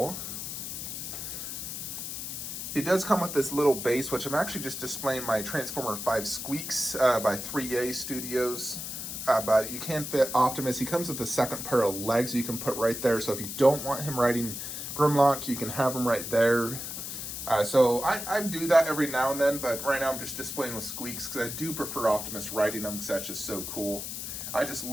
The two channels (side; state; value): left; noise; hiss, 6 dB below the sound